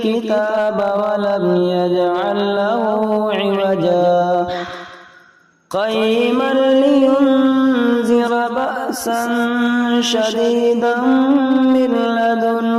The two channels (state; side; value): identical; both; correlation 1.00